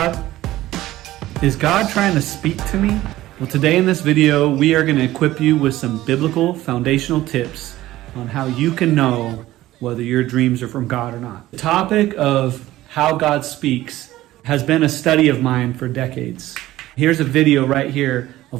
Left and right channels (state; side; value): quieter; left; 15.8 dB